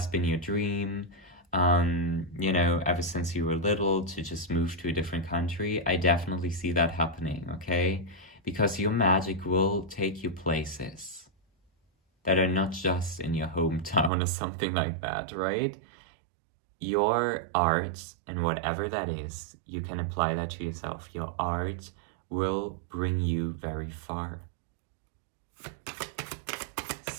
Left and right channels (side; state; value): left; drops out; at 14.1 s